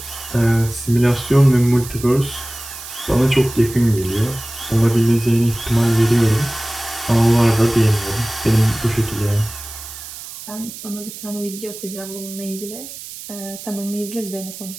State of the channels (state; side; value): noise; right; hiss, 13 dB below the sound